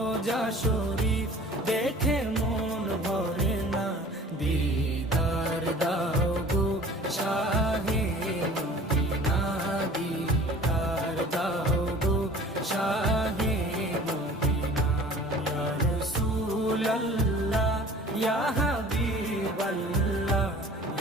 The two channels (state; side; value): normal; both; correlation 0.46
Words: শরীফ দেখে মন ভরে না। দিদার দাও গো শাহে মদিনা, দিদার দাও গো শাহে মদিনা। ইয়া রাসূলাল্লাহ ইয়া হাবিবাল্লাহ,